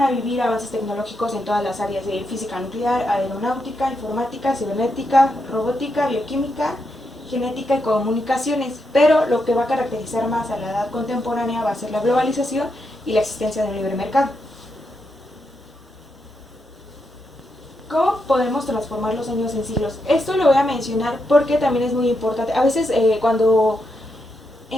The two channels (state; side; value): normal; both; correlation 0.83